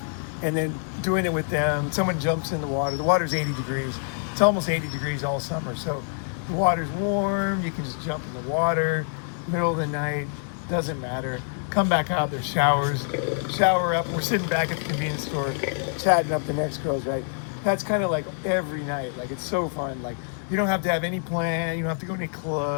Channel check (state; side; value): silent; right; 58 dB below the other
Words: and then doing it with them. Someone jumps in the water. The water's 80 degrees. It's almost 80 degrees all summer. So the water's warm. You can just jump in the water, middle of the night. Doesn't matter. Come back out. There's showers. Shower up. We're sitting back at the convenience store, chatting up the next girls, right? That's kind of like every night. Like it's so fun. Like you don't have to have any plan. You don't have to go to any